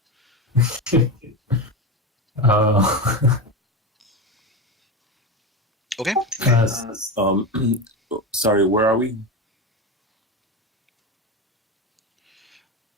Okay. sorry, where are we?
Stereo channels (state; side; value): normal; both; correlation 0.18